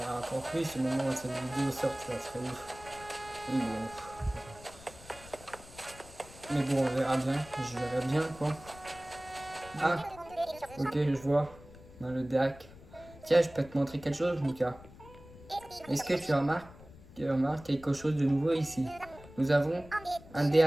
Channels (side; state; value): left; noise; rumble, 19 dB below the sound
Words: encore plus. Au moment où cette vidéo sort, ça serait ouf. Mais bon, on verra bien. Je verrai bien, quoi. Ah, ok, je vois. Dans le DAC. Tiens, je peux te montrer quelque chose, Mika. Est-ce que tu remarques quelque chose de nouveau ici? Nous avons un